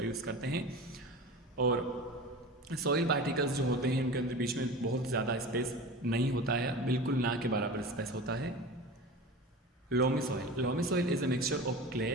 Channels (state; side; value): normal; both; correlation 0.32